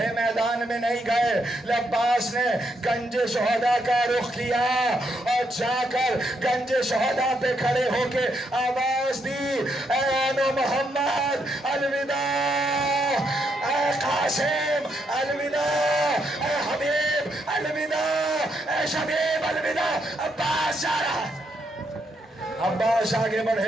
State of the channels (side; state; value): both; normal; correlation 0.77